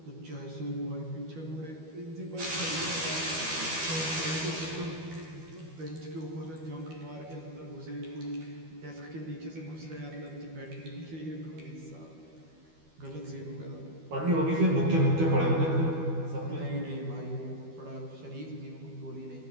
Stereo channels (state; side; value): late; left; 12 ms